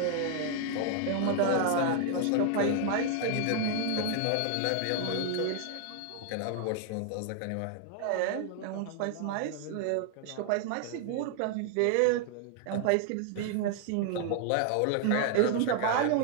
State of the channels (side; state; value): both; different; correlation 0.00